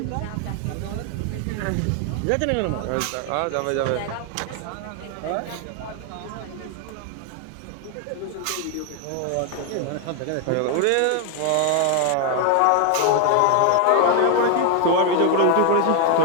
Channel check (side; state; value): both; different; correlation 0.00